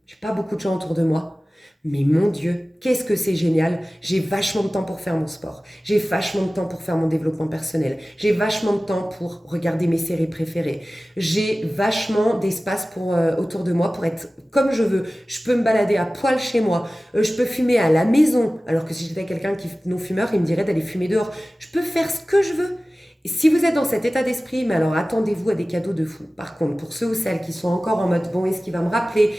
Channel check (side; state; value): both; normal; correlation 0.97